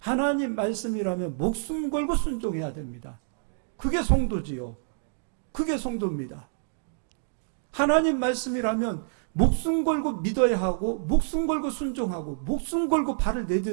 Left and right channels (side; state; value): left; silent; digital silence